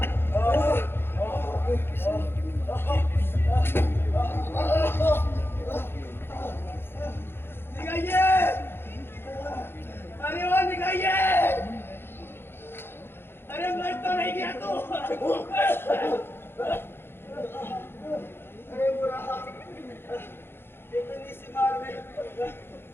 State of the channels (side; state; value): right; late; 0.11 ms